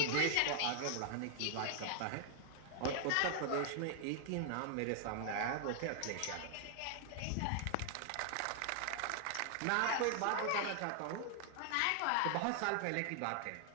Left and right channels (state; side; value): different; both; correlation 0.00